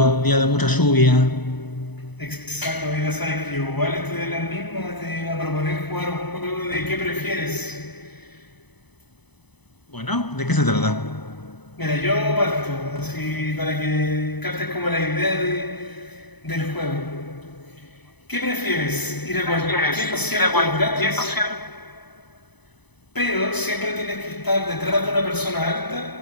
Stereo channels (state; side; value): late; right; 0.99 ms